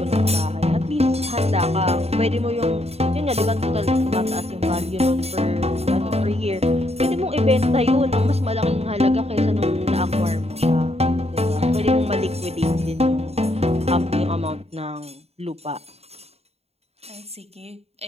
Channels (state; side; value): late; left; 0.30 ms